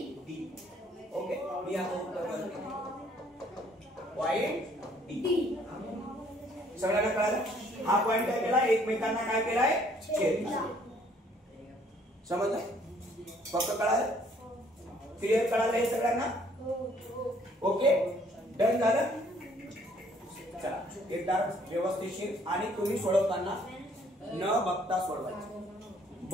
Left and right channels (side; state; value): both; normal; correlation 0.62